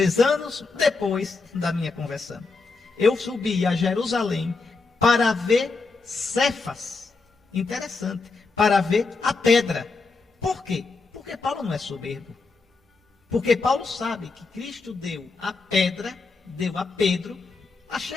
anos depois da minha conversão, eu subi a Jerusalém para ver Cefas. Interessante, para ver a pedra. Por quê? Porque Paulo não é soberbo. Porque Paulo sabe que Cristo deu a pedra, deu a Pedro a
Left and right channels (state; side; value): quieter; right; 4.1 dB